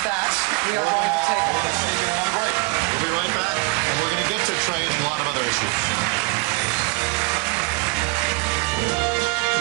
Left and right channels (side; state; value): left; quieter; 26.8 dB